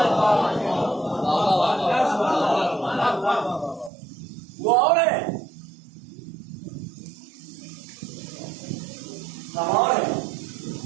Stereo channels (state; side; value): drops out; left; at 3.9 s